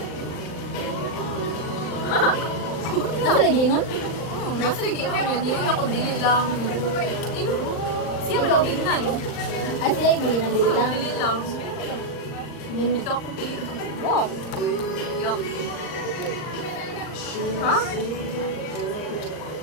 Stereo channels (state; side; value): late; right; 39 ms